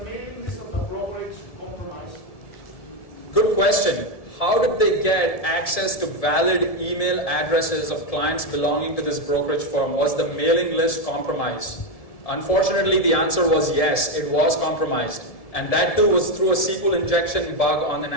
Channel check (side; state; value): right; late; 1.7 ms